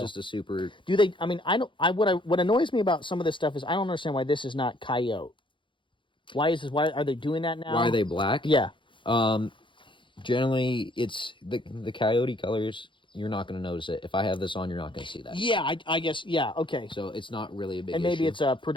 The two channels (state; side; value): late; right; 0.24 ms